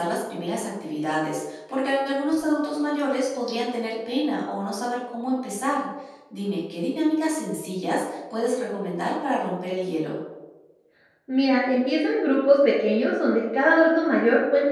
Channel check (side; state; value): both; identical; correlation 1.00